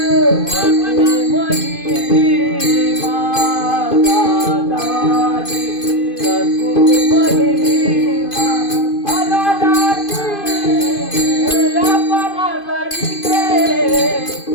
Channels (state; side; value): late; right; 2.5 ms